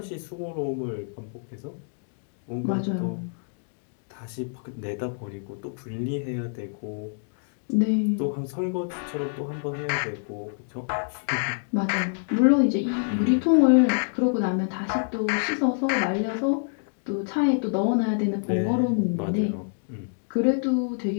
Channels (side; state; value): right; silent; digital silence